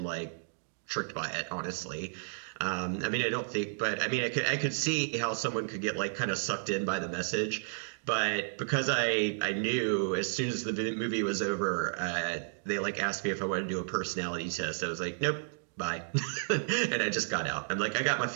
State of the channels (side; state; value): left; silent; digital silence